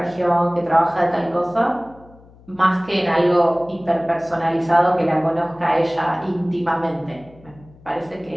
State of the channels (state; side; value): noise; left; hum, 25 dB below the sound